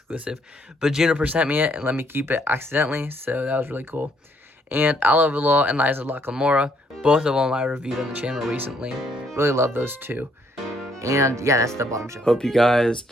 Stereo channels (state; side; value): normal; both; correlation 0.69